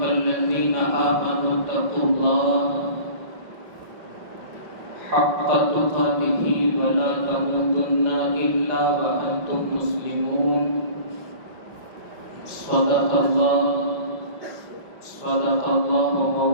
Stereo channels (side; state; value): left; late; 5.5 ms